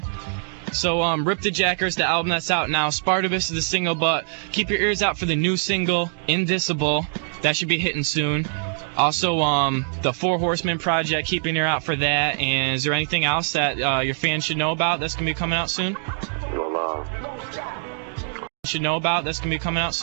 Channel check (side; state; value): left; silent; digital silence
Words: So, Rip the Jackers, the album that's out now. Spartacus is the single, but keep your ears out for the new single, Indicible. That should be hitting soon. Also, the Four Horsemen project, keep your ear out for that. And is there anything else that your fans should know about that's going to be coming out soon? Well, should know about that's going to be coming out